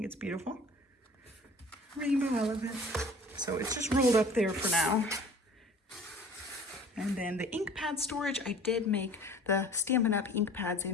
it's beautiful. Rainbow elephant. So it's just rolled up there for now. And then the ink pad storage, I did make the Stampin' Up! Ink pads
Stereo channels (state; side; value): normal; both; correlation 0.47